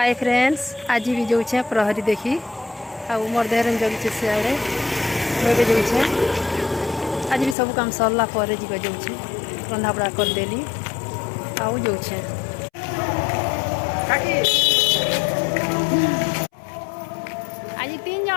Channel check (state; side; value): drops out; right; at 7.6 s